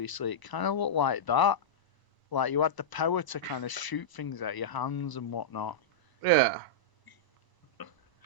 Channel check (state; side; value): late; right; 1.0 ms